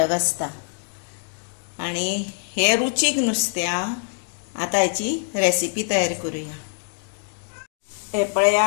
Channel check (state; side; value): silent; right; 63 dB below the other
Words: आसता। आणि हे रुचीक नुस्तें आता हेची रेसिपी तयार करूया। हे